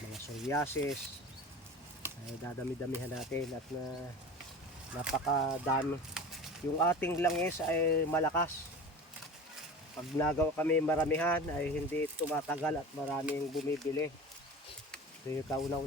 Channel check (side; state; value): both; normal; correlation 0.34